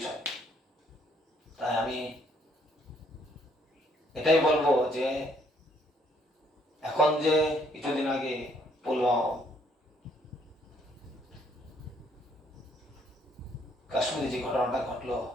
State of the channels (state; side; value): normal; both; correlation 0.67